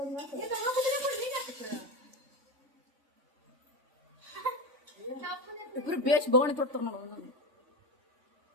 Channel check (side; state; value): left; late; 3.5 ms